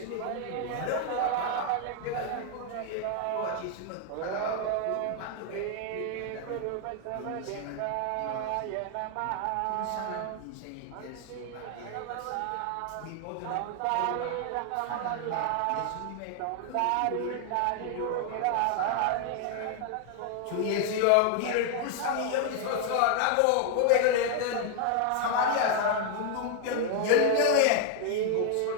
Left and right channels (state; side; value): different; both; correlation 0.00